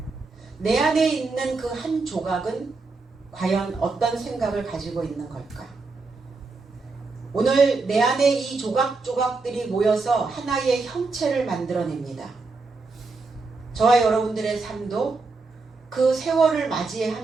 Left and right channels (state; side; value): quieter; left; 3.9 dB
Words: 내 안에 있는 그 한 조각은 과연 어떤 생각을 가지고 있는 걸까? 오늘 내 안에 이 조각들이 모여서 하나의 형체를 만들어냅니다. 저와 여러분들의 삶도 그 세월을